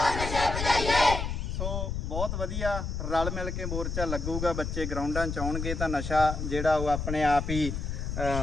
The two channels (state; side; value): noise; left; rumble, 3 dB below the sound